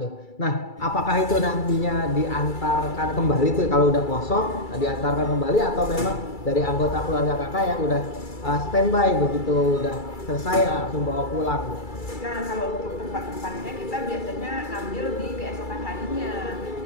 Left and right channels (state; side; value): late; right; 2.3 ms